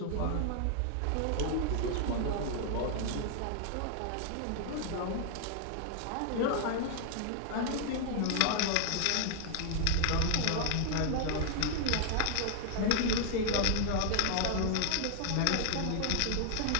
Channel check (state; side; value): different; both; correlation 0.00